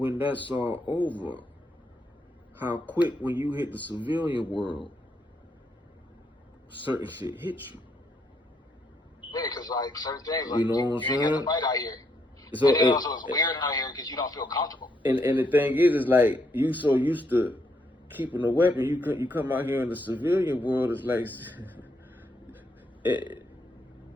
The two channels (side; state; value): both; normal; correlation 0.75